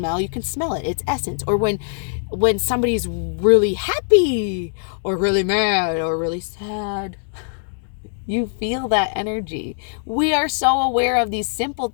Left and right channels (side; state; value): right; silent; digital silence